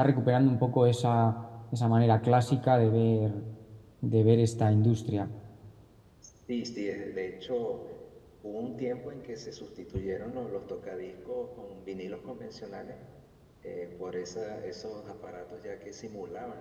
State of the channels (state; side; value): identical; both; correlation 1.00